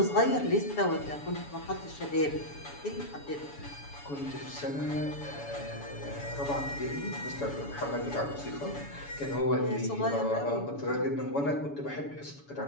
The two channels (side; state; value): right; late; 7.0 ms